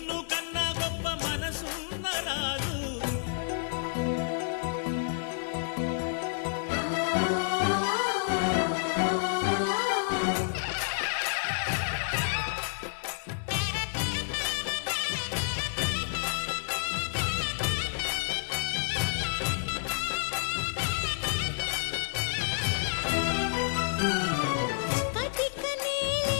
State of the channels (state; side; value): silent; right; digital silence